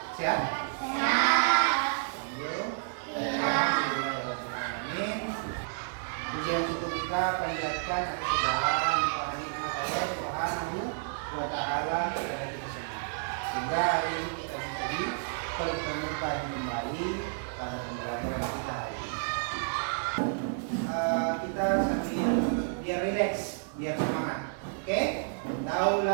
Sehat? Sehat. Amin. Pujian untuk kita panjatkan atas segala nikmat Allah Subhanahu wa Ta'ala kepada kita semua. Sehingga hari ini kita bisa dipertemukan kembali pada pembelajaran kita hari ini. Kita sambil biar rileks, biar semangat. Oke? Tahu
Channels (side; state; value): left; silent; digital silence